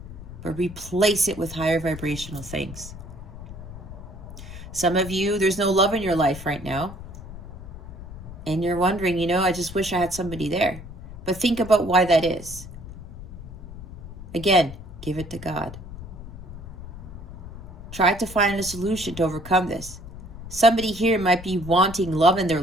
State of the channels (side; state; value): left; noise; rumble, 13 dB below the sound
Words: but replace it with higher vibrational things. Some of you, there's no love in your life right now. And you're wondering, I just wish I had somebody there. But think about why that is. Again, give it to God. Try to find a solution to overcome this. Somebody here might be wanting love in their